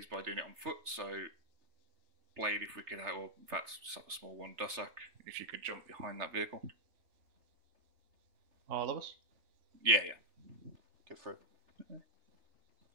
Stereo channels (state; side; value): late; left; 3.3 ms